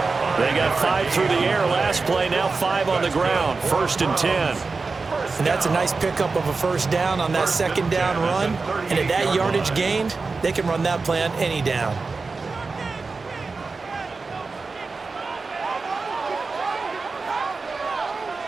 They got 5 through the air last play, now 5 on the ground, 1st and 10. And that's a nice pickup of a 1st down on that 2nd down run. And at that yardage gained, they can run that play on any down.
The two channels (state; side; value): quieter; left; 4.2 dB